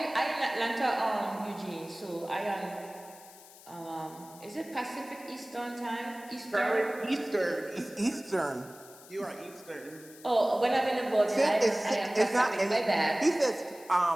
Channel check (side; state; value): left; noise; hiss, 20 dB below the sound